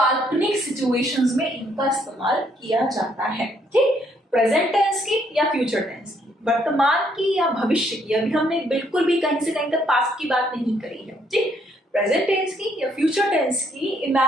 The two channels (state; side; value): normal; both; correlation 0.70